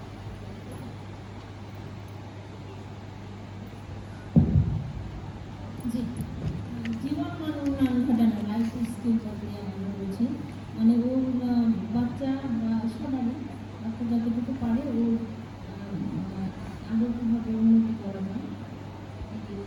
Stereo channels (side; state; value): both; identical; correlation 1.00